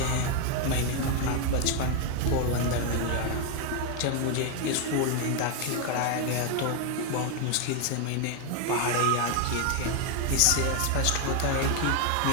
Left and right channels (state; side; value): different; both; correlation 0.01